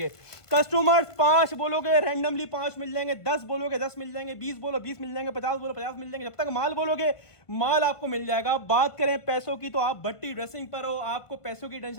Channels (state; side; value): late; right; 1.5 ms